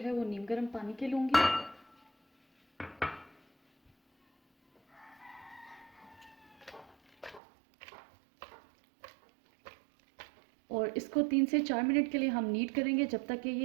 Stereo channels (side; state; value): left; drops out; at 7.4 s